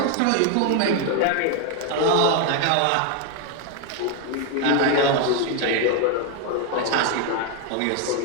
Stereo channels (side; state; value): both; different; correlation 0.01